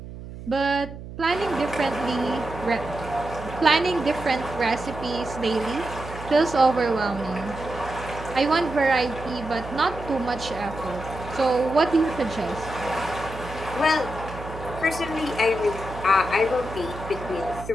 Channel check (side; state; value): right; noise; hum, 12 dB below the sound